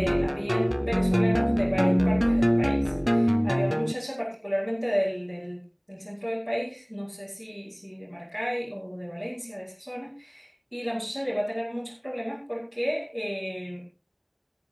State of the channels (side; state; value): both; identical; correlation 1.00